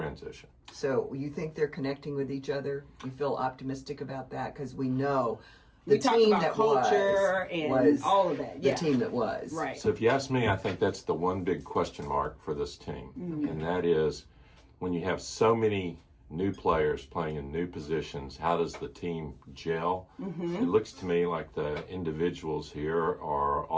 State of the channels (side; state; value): both; identical; correlation 1.00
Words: So you think they're connecting with each other? You feel optimistic about that? Because we know the We talked team about that culture and was all of that. the Yeah. team that was. Right. So if you ask me, I think that's the one big question mark for this team. And that is when you have so many new players playing in new positions, how does the team gel? It looks to me like the individuals here are